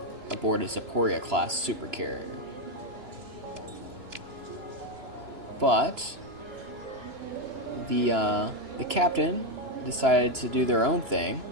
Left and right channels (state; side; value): late; left; 3.0 ms